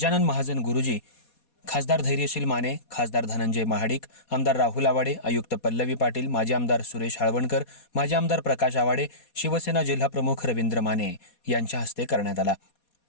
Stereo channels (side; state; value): right; late; 4.2 ms